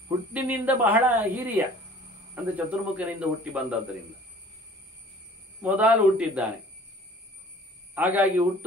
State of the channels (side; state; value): both; normal; correlation 0.49